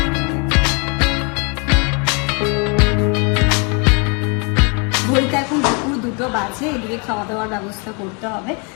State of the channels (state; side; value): quieter; right; 34.3 dB